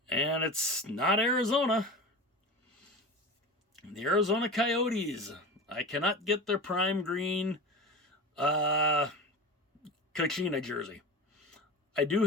And it's not Arizona. The Arizona Coyotes. I cannot get their prime green Kachina jersey. I do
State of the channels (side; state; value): both; normal; correlation 0.29